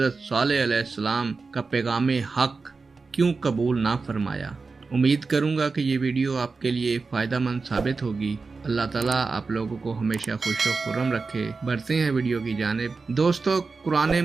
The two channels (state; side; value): quieter; left; 4.3 dB